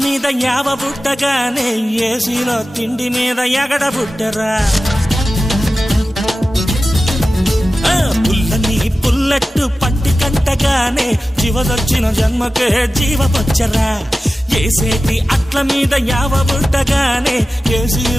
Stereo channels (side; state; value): both; normal; correlation 0.95